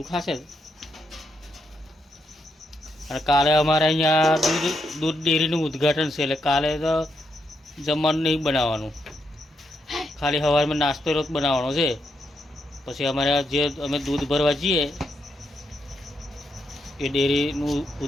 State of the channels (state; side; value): normal; both; correlation 0.80